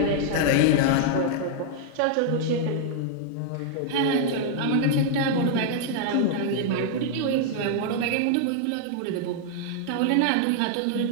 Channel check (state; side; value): different; both; correlation -0.01